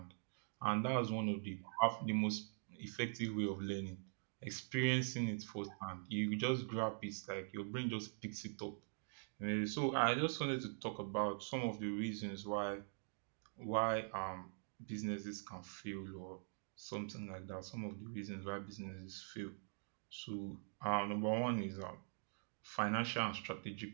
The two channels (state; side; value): silent; left; digital silence